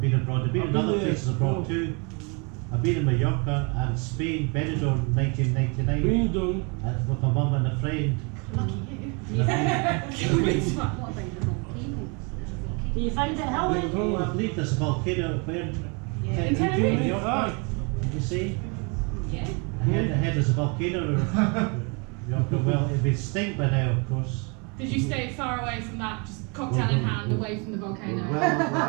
been abroad. I've been in other places abroad too. I've been in Mallorca and Spain, Benidorm in 1999 with my mum and a friend. Lucky you. Yeah. What about the volcano? You find it how I believe there's a volcano where In Tenerife? Mallorca. Did you see? Yeah. Ahead there's a volcano. Mallorca. Well, it'd be extinct by now, of course. Did you stay far away from that, just cocktail in hand, away from the volcano?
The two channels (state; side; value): quieter; left; 33.0 dB